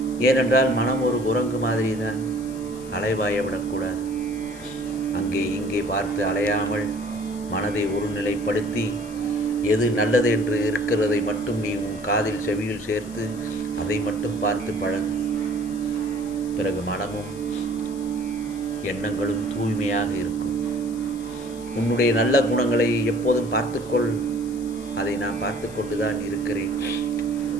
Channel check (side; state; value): left; noise; hiss, 20 dB below the sound